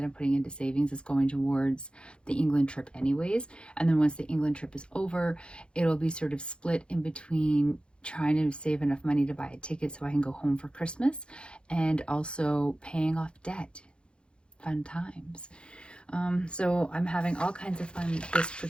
I'm putting into savings is going towards the England trip anyways. And then once the England trip is over, it'll be sort of split in between trying to save enough money to buy a ticket so I can go home for Christmas and also paying off debt. Fun times. So I'm having all kinds of fun this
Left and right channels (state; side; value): late; right; 0.055 ms